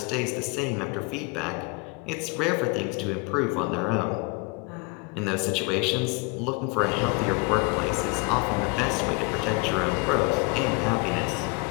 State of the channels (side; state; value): right; quieter; 28.9 dB